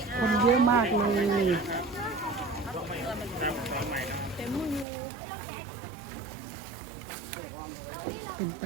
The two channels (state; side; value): drops out; left; at 4.9 s